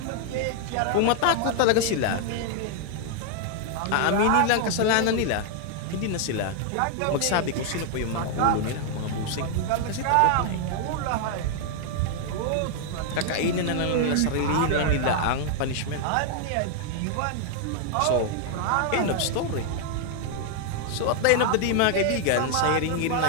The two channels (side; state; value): both; different; correlation 0.00